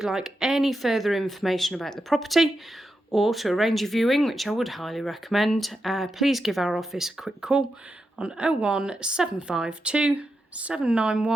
like any further information about the property, or to arrange a viewing, which I would highly recommend, please give our office a quick call on 01752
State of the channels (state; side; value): normal; both; correlation 0.87